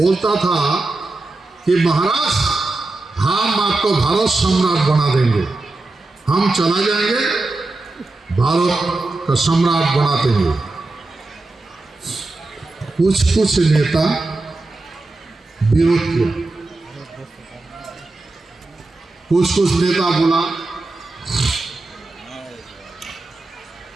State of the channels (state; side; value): quieter; left; 3.1 dB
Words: था कि महाराज हम आपको भारत सम्राट बना देंगे, हम चला जाएंगे, भारत का सम्राट बना देंगे। कुछ नेता विरोध किया, कुछ नेता बोला